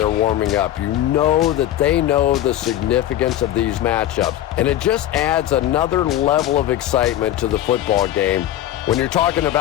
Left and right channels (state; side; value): quieter; right; 12.6 dB